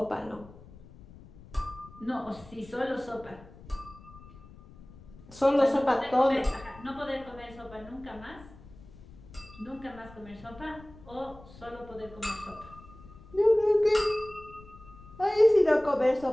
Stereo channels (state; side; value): noise; left; rumble, 20 dB below the sound